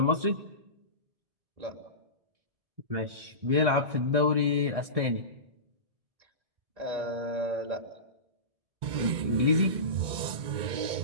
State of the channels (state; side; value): late; left; 2.2 ms